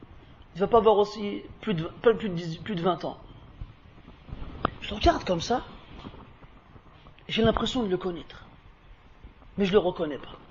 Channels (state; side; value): identical; both; correlation 1.00